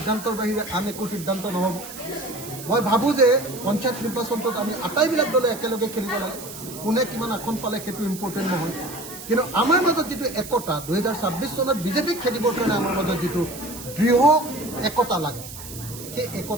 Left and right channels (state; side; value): noise; right; hiss, 13 dB below the sound